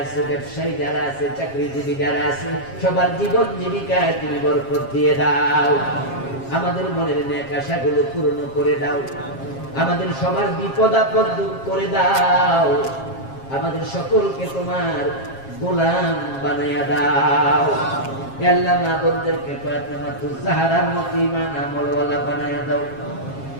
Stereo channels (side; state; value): right; late; 7.4 ms